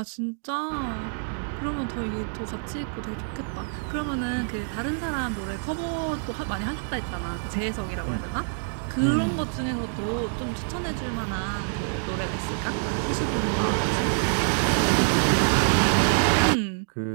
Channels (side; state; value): left; silent; 58 dB below the other